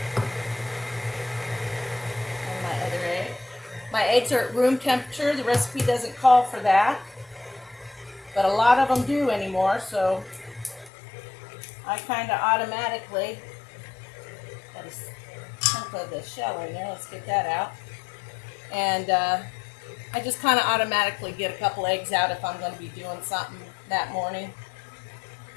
My eggs are at room temperature. The recipe doesn't call for that, but a lot of them do anymore, so I kind of automatically, got a chunk of the shell in there, let's get that out, and I just kind of automatically get a couple eggs out if I'm going to be doing something that morning.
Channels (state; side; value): drops out; right; at 10.9 s